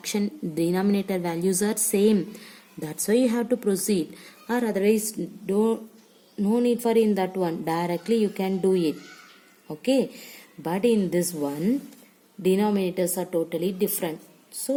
denominator values are same. That's why you have to proceed. Or otherwise, no need for in that one. Directly you can do it. Okay, but in this one, denominators are totally different.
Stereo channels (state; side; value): identical; both; correlation 1.00